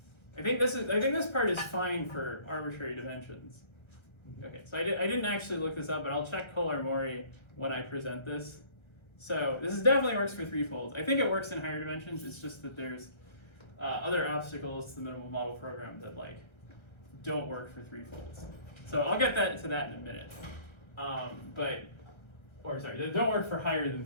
think this part is fine for arbitrary dimensions. Okay, so I didn't actually look this up, but I'll check Kolar-Maury when I present this. So this definitely works for threefolds. I think it works in higher dimensions. It's just that there's other obstacles to the minimal model program that don't work for threefolds. So I'll get to that in a minute. They don't work for higher than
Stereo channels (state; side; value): late; right; 1.3 ms